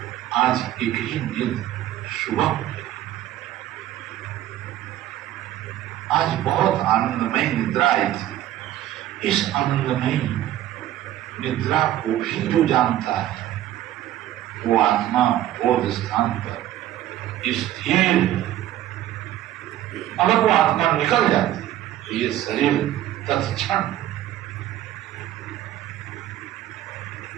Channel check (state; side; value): quieter; left; 13.1 dB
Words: आज एक ही नींद सुबह हो गई, आज बहुत आनंदमय निद्रा आई थी। इस आनंदमय निद्रा को भी जो जानता है, वो आत्मा बोध स्थान पर स्थिर। अगर वो आत्मा निकल जाती तो ये शरीर तत्क्षण